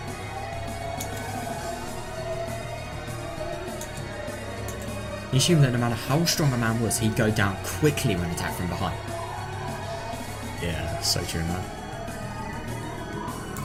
He assumed that no matter how strong a man was, he'd go down quickly when attacked from behind. Yeah, so true, man.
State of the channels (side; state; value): both; identical; correlation 1.00